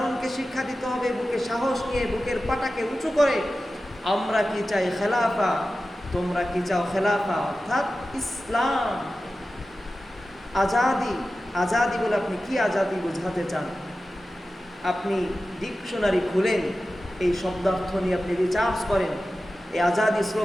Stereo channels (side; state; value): both; normal; correlation 0.94